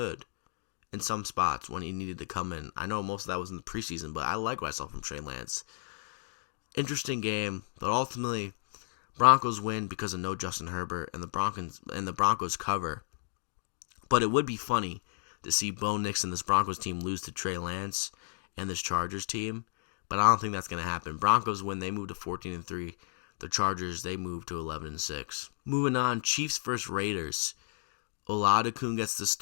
in some spots when he needed to come in. I know most of that was in the preseason, but I like what I saw from Trey Lance. Interesting game, but ultimately Broncos win because of no Justin Herbert, and the Broncos cover. But it would be funny to see Bo Nix and this Broncos team lose to Trey Lance and this Chargers team, but I don't think that's going to happen. Broncos win, they move to 14-3. The Chargers, they move to 11-6. Moving on, Chiefs versus Raiders. Oladokun gets the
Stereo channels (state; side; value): silent; right; digital silence